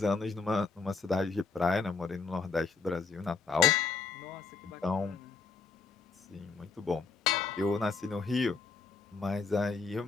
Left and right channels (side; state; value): right; quieter; 4.8 dB